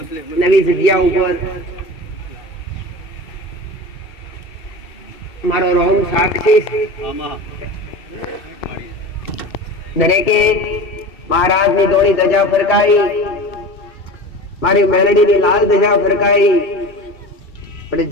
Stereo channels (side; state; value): right; late; 2.7 ms